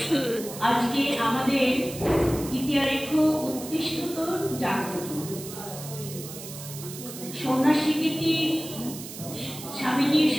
আজকে আমাদের ইতিহারেখ উৎকৃষ্টতর জাগ্রত সন্ন্যাসী গীতি, স্বামীজির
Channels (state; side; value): noise; right; hiss, 12 dB below the sound